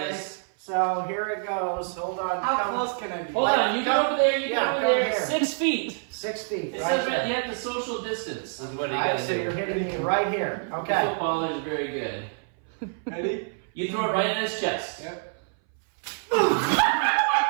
this. So here it goes. Hold on. How close can I be? Hold on, you go over there, you Yeah, go over come there. here. 6 feet. 6 feet. It Right says there. you have to social distance, is what you All right, got to so do. you're hitting me right here. The Okay. footballer is very good. Ready? You throw it right in his chest. Yep.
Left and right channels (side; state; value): left; silent; 59 dB below the other